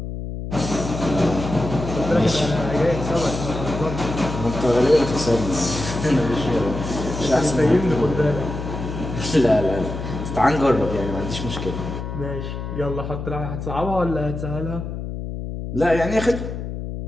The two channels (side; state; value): left; noise; hum, 6 dB below the sound